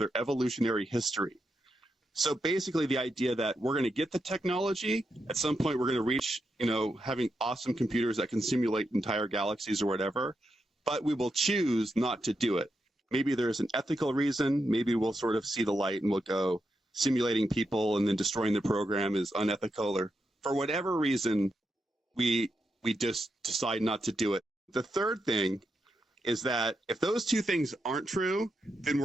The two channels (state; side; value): normal; both; correlation 0.85